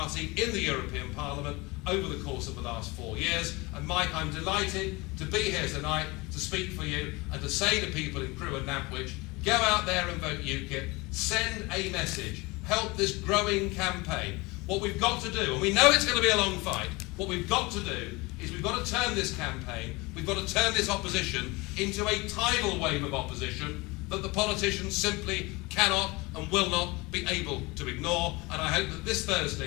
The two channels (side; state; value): right; quieter; 24.2 dB